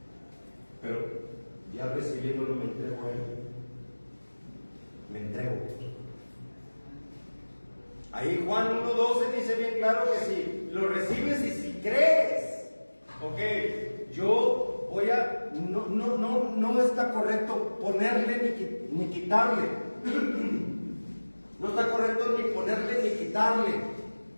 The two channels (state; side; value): inverted; both; correlation -1.00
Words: Pero ya recibiéndolo me entrego a Él. Me entrego. Ahí Juan 1:12 dice bien claro que si lo recibes y si crees, ok, yo voy a, no está correcto ponerle ni quitarle, no está correcto ni ponerle ni quitarle